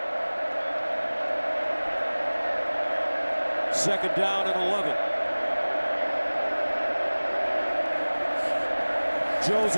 Second down and 11.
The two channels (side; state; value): both; inverted; correlation -1.00